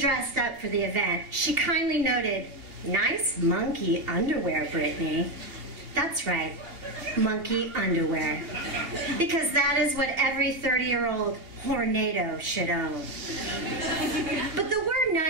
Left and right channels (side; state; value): left; late; 2.8 ms